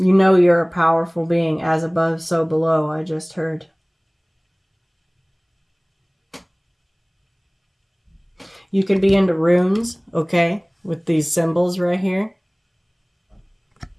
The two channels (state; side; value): identical; both; correlation 1.00